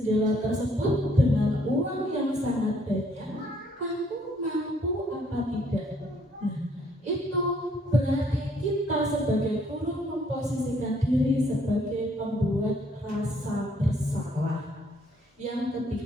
tersebut dengan uang yang sangat banyak, kamu mampu apa tidak? Nah, itu berarti kita sebagai guru memposisikan diri sebagai pembuat rasa bersalah. Yang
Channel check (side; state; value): both; normal; correlation 0.66